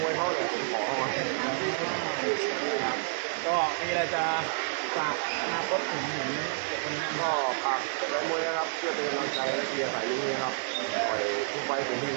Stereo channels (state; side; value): silent; left; 58 dB below the other